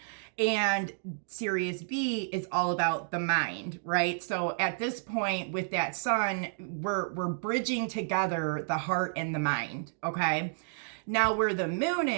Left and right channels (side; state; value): left; silent; digital silence